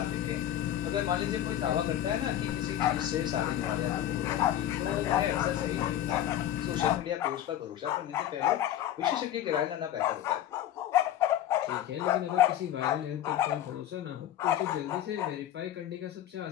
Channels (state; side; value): quieter; right; 11.8 dB